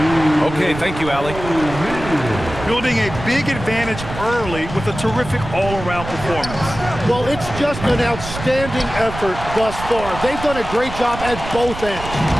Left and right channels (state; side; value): noise; right; rumble, 10 dB below the sound